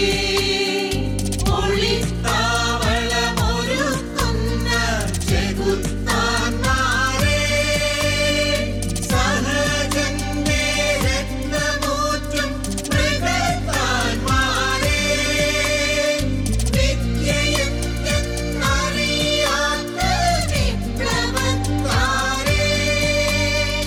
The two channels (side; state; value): both; identical; correlation 1.00